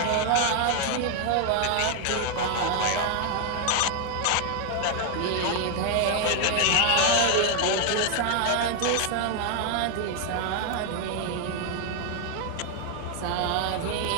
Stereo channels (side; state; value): both; different; correlation 0.01